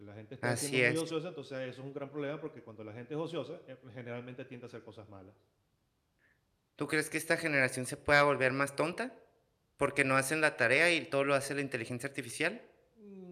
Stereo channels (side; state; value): both; identical; correlation 1.00